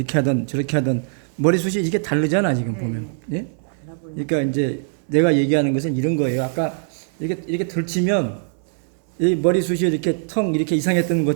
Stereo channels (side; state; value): left; silent; 65 dB below the other